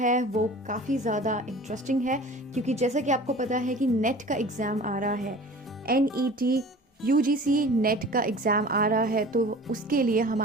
वो काफ़ी ज़्यादा इंटरेस्टिंग है क्योंकि जैसा कि आपको पता है कि नेट का एग्ज़ाम आ रहा है, NET UGC नेट का एग्ज़ाम आ रहा है, तो उसके लिए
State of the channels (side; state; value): both; normal; correlation 0.42